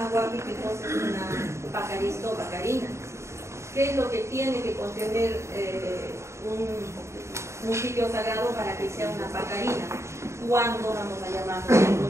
huaca y qué cosa es una pacarista o pacarina, qué es lo que tiene que contener un sitio sagrado para que sea una pacarina, cuándo vamos a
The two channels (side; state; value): left; late; 0.14 ms